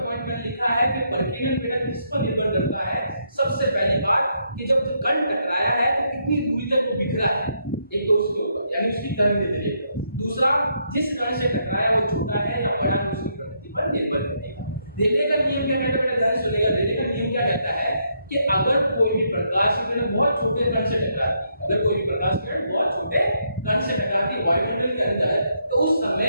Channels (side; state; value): both; inverted; correlation -0.76